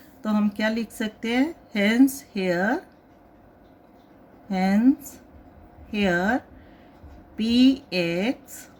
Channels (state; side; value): identical; both; correlation 1.00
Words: तो हम क्या लिख सकते हैं? Hence here px